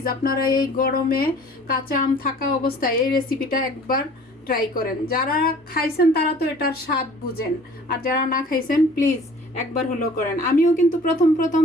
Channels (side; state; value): both; normal; correlation 0.50